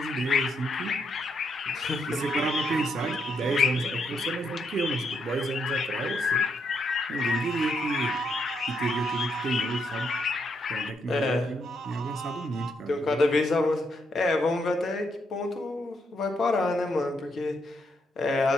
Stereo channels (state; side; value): normal; both; correlation 0.77